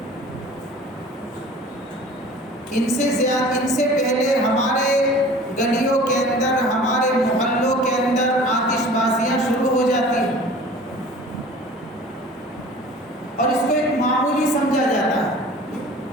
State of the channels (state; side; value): normal; both; correlation 0.44